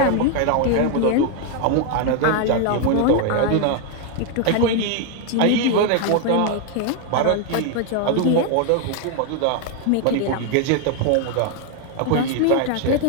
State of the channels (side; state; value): both; different; correlation 0.01